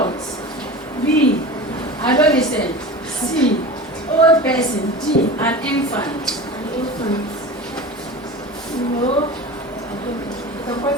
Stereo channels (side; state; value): both; normal; correlation 0.32